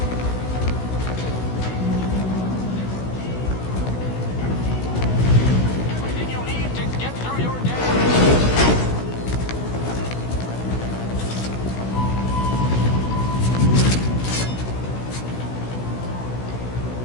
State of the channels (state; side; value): late; right; 16 ms